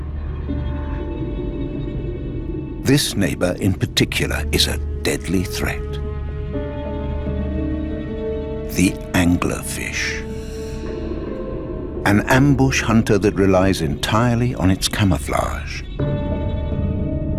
This neighbor in particular is a deadly threat. The anglerfish. An ambush hunter that relies entirely on its camouflage.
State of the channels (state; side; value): identical; both; correlation 1.00